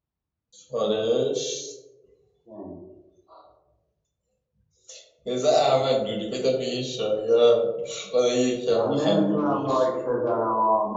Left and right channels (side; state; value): both; identical; correlation 1.00